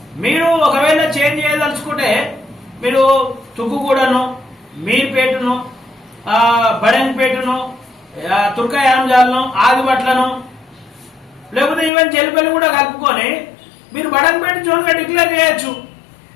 మీరు ఒకవేళ చేంజ్ చేయదలుచుకుంటే మీరు తుక్కుగూడను, మీర్పేటను, బడంపేటను, తుర్కయాంజాలను, ఆదిబట్లను లేకపోతే ఈవెన్ చెలిపల్లి కూడా కలుపుకొని మీరు బడంపేట జోన్గా డిక్లేర్ చేయొచ్చు.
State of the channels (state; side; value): drops out; right; at 11.9 s